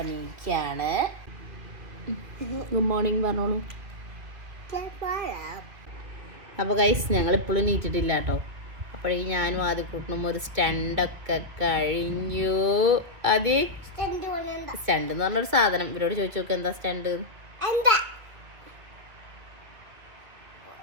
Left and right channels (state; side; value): late; left; 2.6 ms